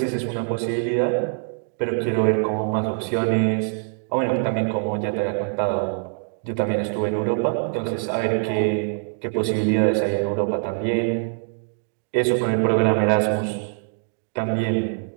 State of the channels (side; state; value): left; silent; digital silence